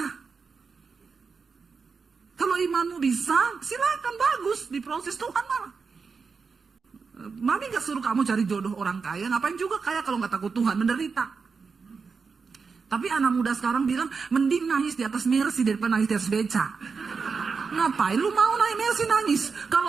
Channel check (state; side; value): quieter; left; 5.1 dB